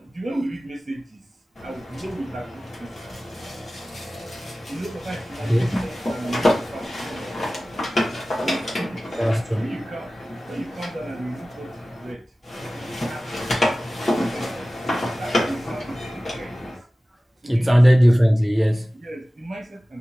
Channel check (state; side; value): normal; both; correlation 0.96